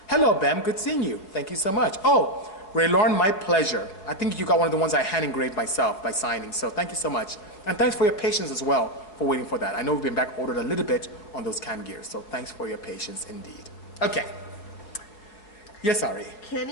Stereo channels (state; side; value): late; right; 4.9 ms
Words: Hello, Bem. Good seeing you. Thank you so much. Oh, Ray Lauren, my pleasure. I think you got one of the ones I hand engraved myself by signing, so thank you so much. And thanks for your patience as well for waiting for that. I know we've been back ordered a little bit on those cam gears, so thanks for your patience indeed. Okay. Yes, Ari.